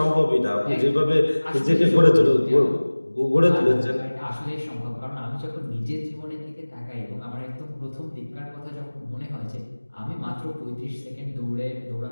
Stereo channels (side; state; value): both; inverted; correlation -1.00